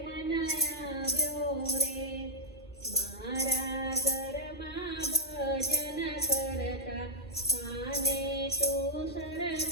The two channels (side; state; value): both; normal; correlation -0.06